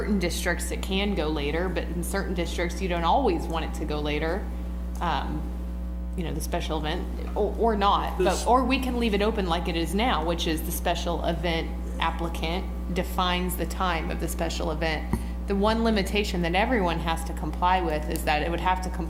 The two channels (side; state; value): both; identical; correlation 1.00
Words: districts it can go later, but in certain districts you don't always want it to go later. You know, the special event, or not, or we can leave it open like it is now, which is the special event applicant defines the time of the special event. The one limitation that everyone has to comply with is that it would have to